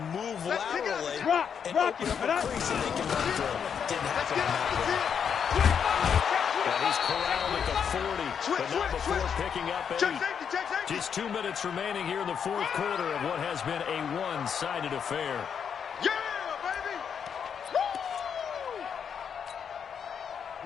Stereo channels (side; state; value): right; quieter; 7.4 dB